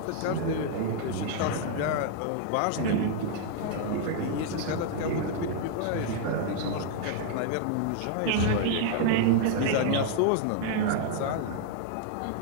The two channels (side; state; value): both; different; correlation 0.00